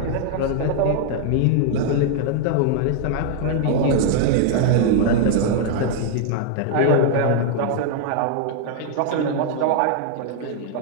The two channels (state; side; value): different; both; correlation 0.00